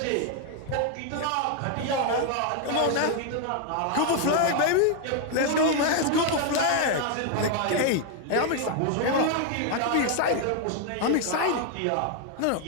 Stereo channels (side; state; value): both; different; correlation 0.00